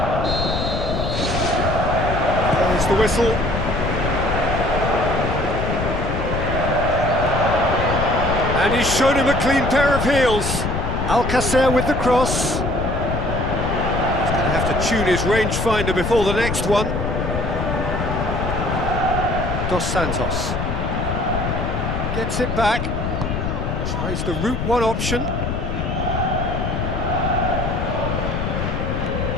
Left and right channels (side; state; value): left; noise; rumble, 2 dB below the sound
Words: There's the whistle. And he's shown him a clean pair of heels. Alcacer with the cross. He's going to have to tune his rangefinder before the next one. Dos Santos. Gets it back. Tries the route one option.